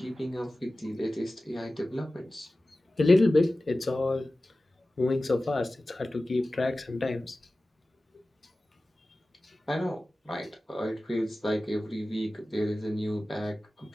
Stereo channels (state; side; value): normal; both; correlation 0.96